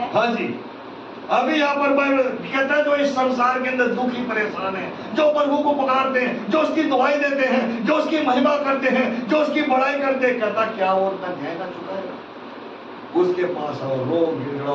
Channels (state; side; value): identical; both; correlation 1.00